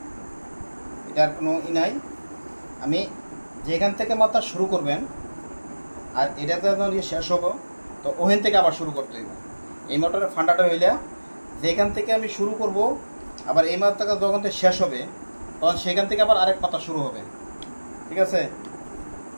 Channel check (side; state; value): both; inverted; correlation -1.00